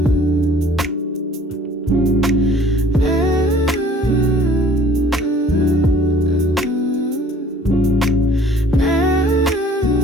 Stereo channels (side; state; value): both; normal; correlation 0.53